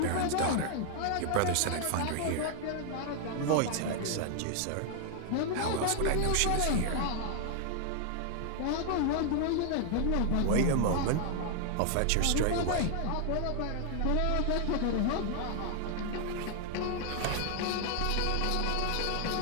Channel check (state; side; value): different; both; correlation 0.00